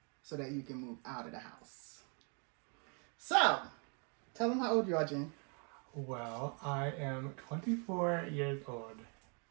so that you can move out of the house. So, tell them how old you are, Jean. Well, I am 24 years old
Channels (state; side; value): quieter; left; 37.0 dB